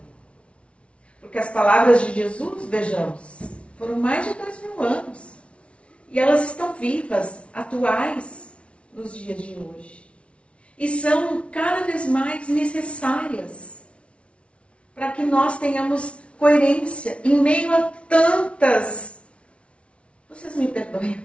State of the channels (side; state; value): right; late; 0.061 ms